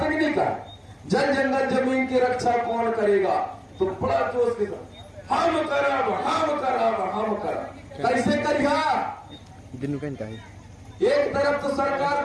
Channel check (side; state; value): both; identical; correlation 1.00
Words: कि नहीं कहा? जन जंगल जमीन की रक्षा कौन करेगा? तो बड़ा जोश के साथ हम करब। कैसे करिया? एक तरफ तो सरकार